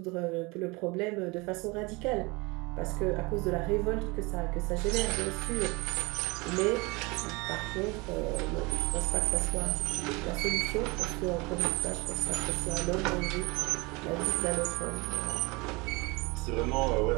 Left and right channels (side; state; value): left; quieter; 25.9 dB